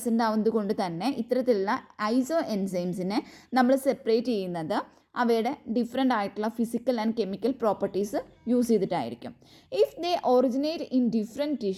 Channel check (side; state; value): both; identical; correlation 1.00